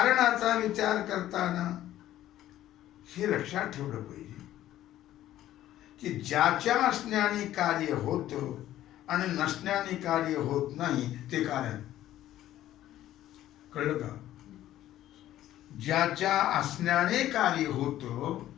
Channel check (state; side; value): quieter; right; 13.3 dB